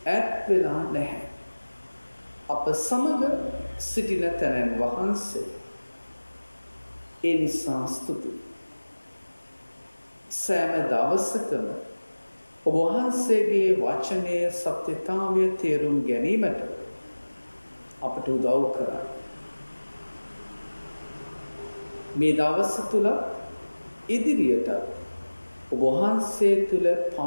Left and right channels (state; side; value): inverted; both; correlation -1.00